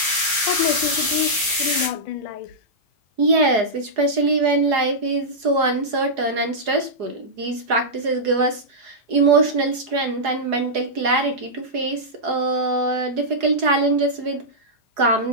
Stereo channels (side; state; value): left; late; 4.8 ms